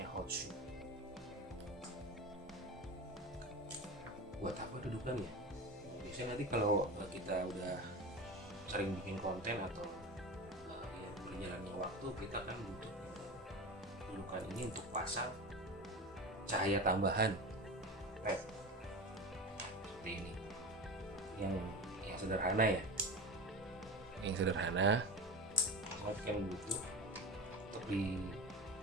hot shoe. Buat apa dudukannya? Biasanya nanti kalau kita udah sering bikin konten atau ya berjalannya waktu, kita kan butuh dudukan ini untuk pasang cahaya tambahan LED seperti ini, yang sederhana ya, yang sederhana. LED kan butuh untuk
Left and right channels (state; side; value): normal; both; correlation 0.27